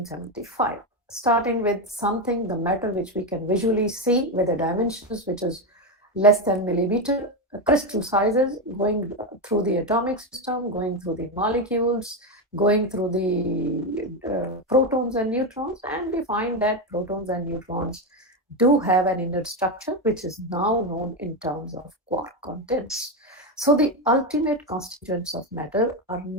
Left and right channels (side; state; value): both; normal; correlation 0.11